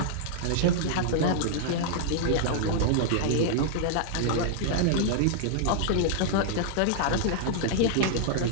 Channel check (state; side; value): different; both; correlation -0.01